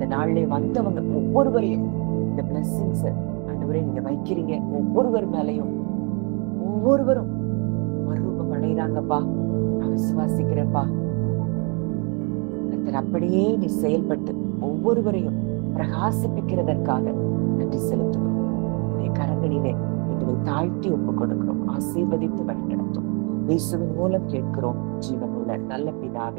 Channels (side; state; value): left; quieter; 34.6 dB